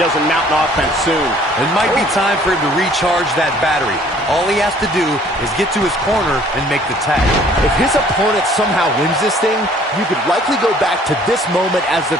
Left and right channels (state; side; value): normal; both; correlation 0.56